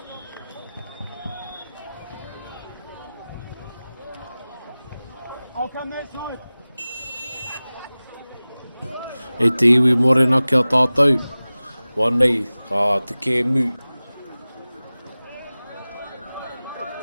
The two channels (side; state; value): both; inverted; correlation -0.98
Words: I'll come that side. E te iwi morena kia tātou. Wānei, ka te kēmu.